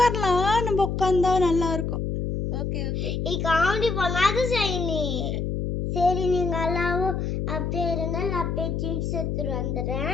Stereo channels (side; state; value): left; noise; hum, 1 dB below the sound